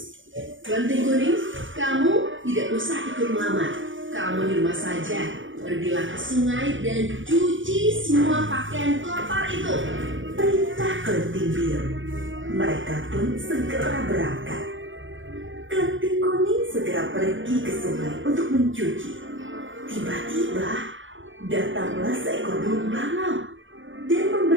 Klenting Kuning, kamu tidak usah ikut melamar. Kamu di rumah saja. Pergilah ke sungai dan cuci semua pakaian kotor itu. Perintah Klenting Biru. Mereka pun segera berangkat. Klenting Kuning segera pergi ke sungai untuk mencuci. Tiba-tiba datanglah seekor burung bangau dan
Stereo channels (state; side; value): late; left; 0.56 ms